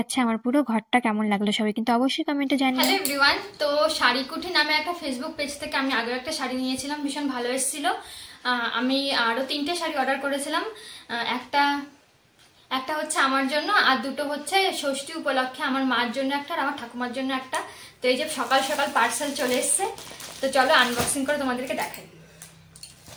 আমার পুরো ঘরটা। কেমন লাগলো সবাই কিন্তু অবশ্যই কমেন্টে জানিও। হ্যালো এভরিওয়ান, তো শাড়িকুঠি নামে একটা ফেসবুক পেজ থেকে আমি আগেও একটা শাড়ি নিয়েছিলাম, ভীষণ ভালো এসেছিল। আমি আরও 3টে শাড়ি অর্ডার করেছিলাম। একটা একটা হচ্ছে আমার জন্য, আর দুটো হচ্ছে ষষ্ঠী উপলক্ষে আমার মার জন্য একটা, আর আমার ঠাকুমার জন্য একটা। তো এই যে সকাল সকাল পার্সেল চলে এসছে, তো চলো আনবক্সিং করে তোমাদেরকে দেখাই।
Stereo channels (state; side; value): identical; both; correlation 1.00